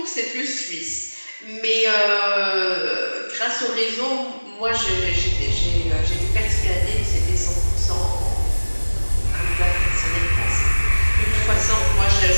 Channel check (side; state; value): both; inverted; correlation -1.00